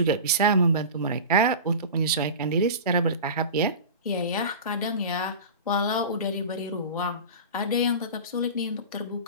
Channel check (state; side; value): inverted; both; correlation -0.31